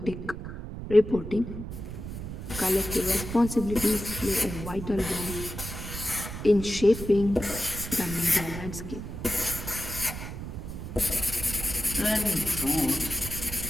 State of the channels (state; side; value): noise; right; rumble, 8 dB below the sound